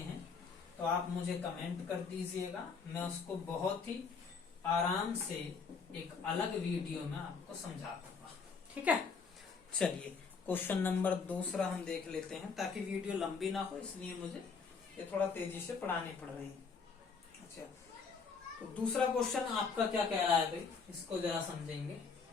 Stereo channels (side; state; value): right; quieter; 5.2 dB